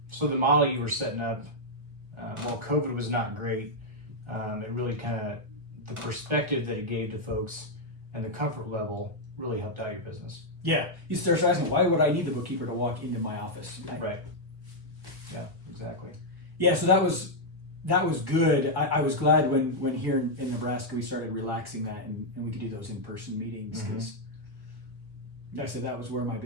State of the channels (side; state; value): left; late; 1.4 ms